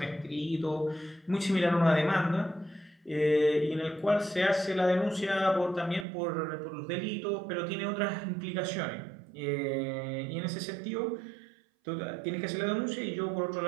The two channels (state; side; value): drops out; left; at 6.1 s